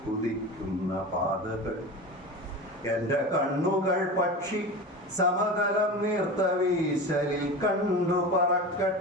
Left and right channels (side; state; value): both; normal; correlation 0.29